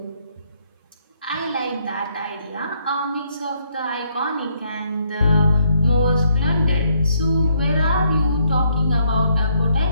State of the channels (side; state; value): both; inverted; correlation -0.71